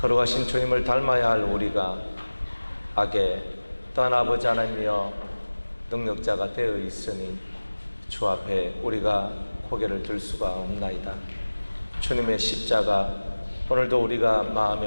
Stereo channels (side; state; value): both; inverted; correlation -1.00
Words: 걸어가신 주님을 닮아야 할 우리가 악에 또한 아버지 하나님이여 능력자가 되어 있으니 주 앞에 우리가 고개를 들 수가 없나이다. 주님의 십자가 오늘도 우리가